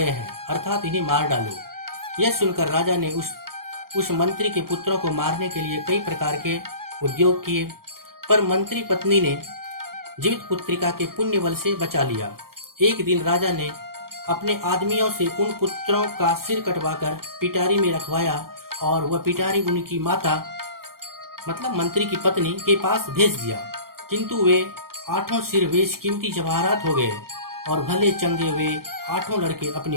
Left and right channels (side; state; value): left; late; 0.93 ms